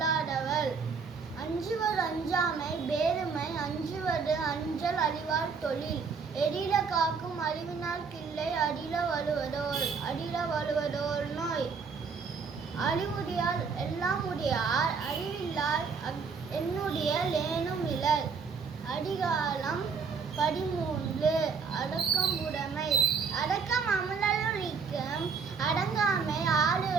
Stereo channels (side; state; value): left; quieter; 5.4 dB